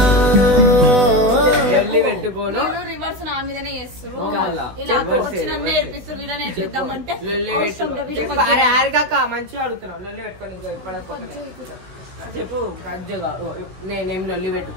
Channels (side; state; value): left; late; 16 ms